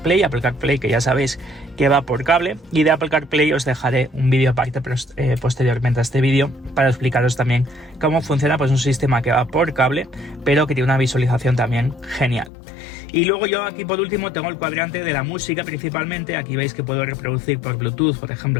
que ya sabéis que va por cable, y de Apple CarPlay os dejaré un vídeo aparte posteriormente a este vídeo para explicaros también cómo funciona pues un sistema que va por cable, pero que tiene una visualización también genial. Y luego yo aquí por último tengo el cuadrante de la música principalmente. Aquí veis que puedo reproducir por Bluetooth, por ejemplo,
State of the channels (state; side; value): drops out; right; at 12.5 s